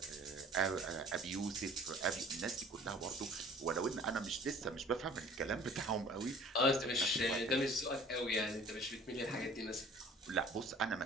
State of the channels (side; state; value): both; normal; correlation 0.49